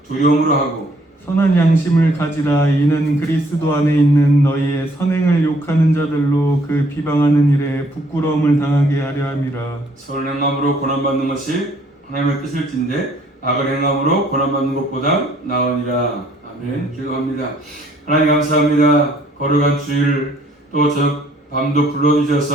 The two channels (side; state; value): both; normal; correlation 0.63